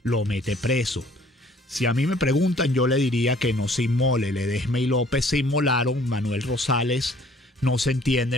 lo mete preso. Si a mí me preguntan, yo le diría que no se inmole. Ledesma y López se inmolaron. Manuel Rosales no se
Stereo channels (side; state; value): both; normal; correlation 0.57